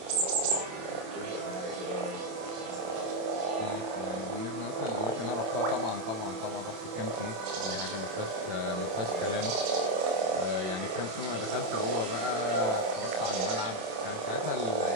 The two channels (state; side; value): late; left; 27 ms